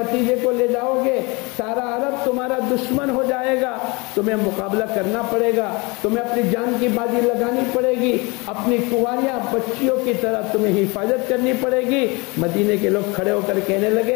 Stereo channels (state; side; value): quieter; right; 27.0 dB